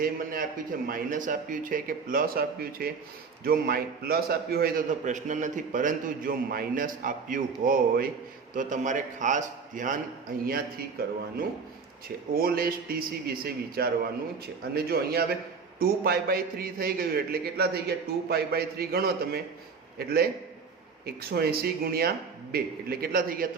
મને આપ્યું છે માઇનસ આપ્યું છે કે પ્લસ આપ્યું છે. જો પ્લસ આપ્યું હોય તો પ્રશ્ન નથી, પરંતુ જો માઇનસ આપ્યું હોય તો તમારે ખાસ ધ્યાન અહીંયાથી કરવાનું છે. ઓલ એસ ટીસી વિશે વિચારવાનું છે. અને જો અહીંયા હવે 2π/3 થઈ ગયું એટલે કેટલા થઈ ગયા? 2π/3 ગણો તમે એટલે 180 ગુણ્યા 2 એટલે કેટલા થઈ ગયા?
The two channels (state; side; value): quieter; left; 5.3 dB